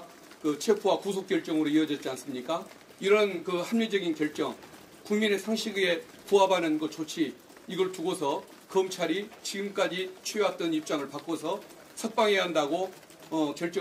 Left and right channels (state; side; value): identical; both; correlation 1.00